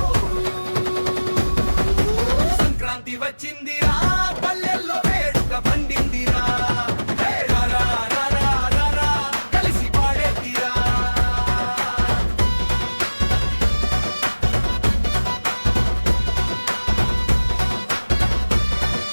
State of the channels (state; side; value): inverted; both; correlation -1.00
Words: సంక్రాంతి వచ్చిందిరా పల్లెల్లో వేడుక పండిందిరా కలిసి పాడేదిరా